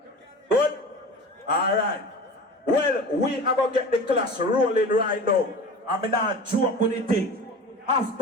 Good? Alright. Well, we are going to get the class rolling right now. I'm not joke with the thing.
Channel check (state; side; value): normal; both; correlation 0.35